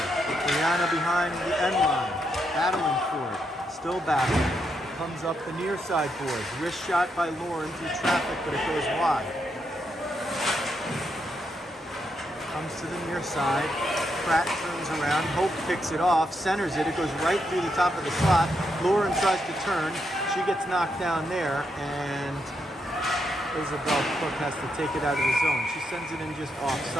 Brianna behind the end line, battling for it. Still battling. Comes up the near side boards. Wrist shot by Lauren through traffic, but it goes wide. Comes to the near side. Pratt turns around. Hope picks it off, centers it. It goes right through the top of the slot. Lauren tries to turn. She gets knocked down there, and Isabel Cook has to take it out of the zone. She sends it in just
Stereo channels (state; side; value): normal; both; correlation 0.80